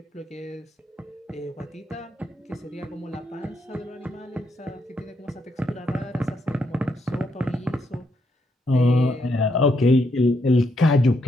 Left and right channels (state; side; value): normal; both; correlation 0.77